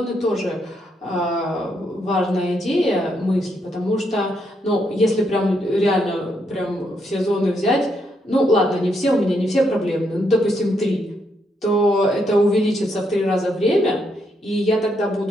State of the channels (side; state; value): both; normal; correlation 0.77